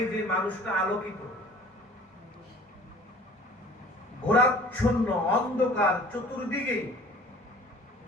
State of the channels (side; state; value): both; normal; correlation 0.48